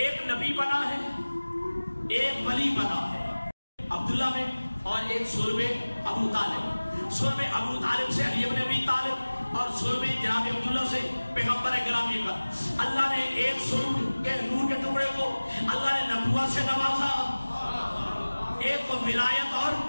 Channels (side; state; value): both; inverted; correlation -1.00